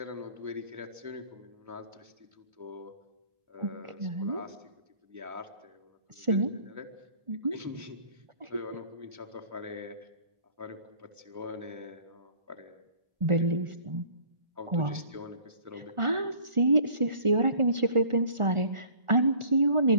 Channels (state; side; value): late; left; 1.4 ms